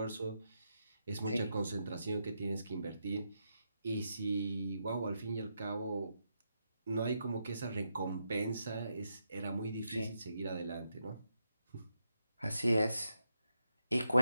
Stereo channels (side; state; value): both; inverted; correlation -0.83